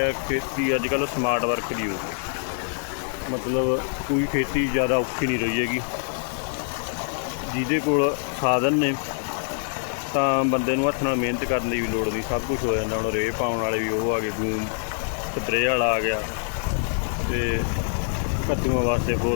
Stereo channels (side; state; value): right; silent; digital silence